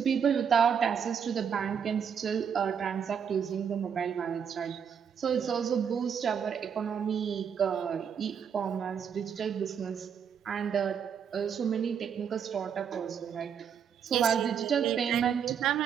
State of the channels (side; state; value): left; quieter; 7.5 dB